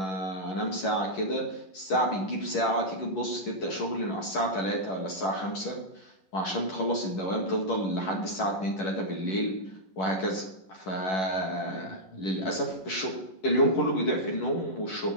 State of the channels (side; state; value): right; late; 11 ms